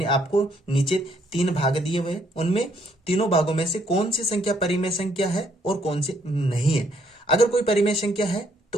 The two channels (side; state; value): both; normal; correlation 0.69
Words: आपको नीचे 3 भाग दिए हुए, उनमें तीनों भागों में से कौन सी संख्या परिमेय संख्या है और कौन सी नहीं है। अगर कोई परिमेय संख्या है